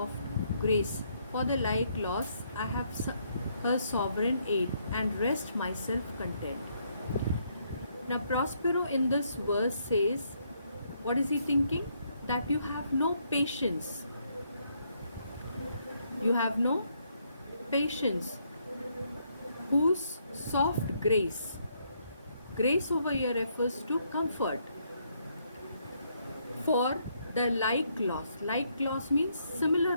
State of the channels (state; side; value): inverted; both; correlation -0.73